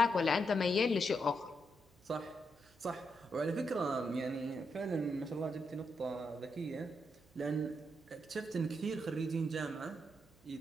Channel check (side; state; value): right; noise; hum, 30 dB below the sound